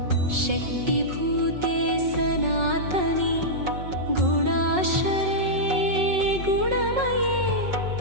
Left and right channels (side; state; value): left; late; 5.4 ms